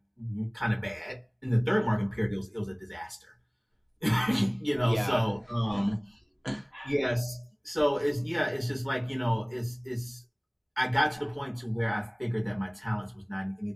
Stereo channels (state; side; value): identical; both; correlation 1.00